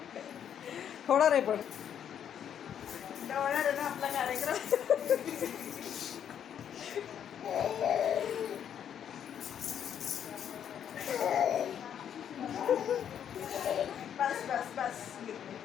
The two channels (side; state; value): right; quieter; 9.0 dB